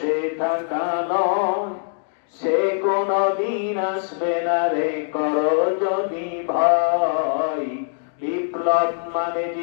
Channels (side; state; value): right; silent; digital silence